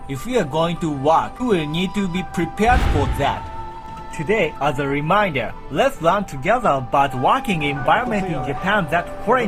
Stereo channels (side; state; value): both; identical; correlation 1.00